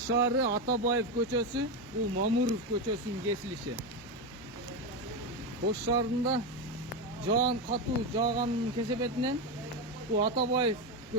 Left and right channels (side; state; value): both; normal; correlation 0.12